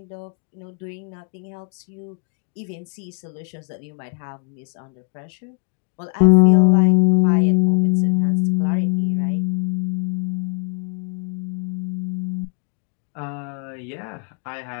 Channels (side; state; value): right; quieter; 39.7 dB